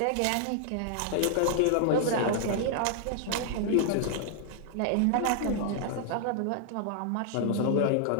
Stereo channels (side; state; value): both; different; correlation -0.01